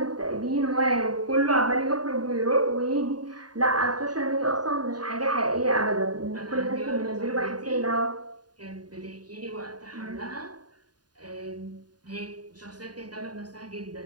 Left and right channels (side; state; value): left; late; 0.70 ms